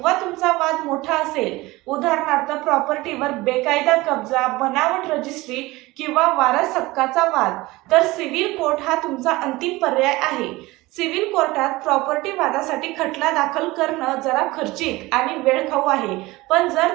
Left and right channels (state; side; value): quieter; left; 20.5 dB